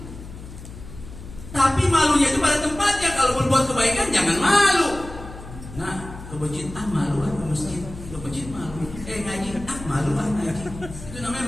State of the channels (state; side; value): noise; left; hum, 14 dB below the sound